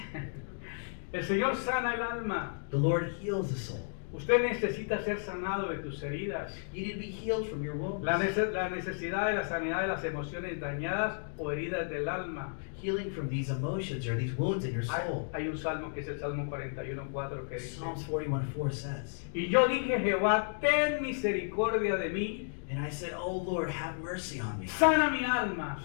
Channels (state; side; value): silent; right; digital silence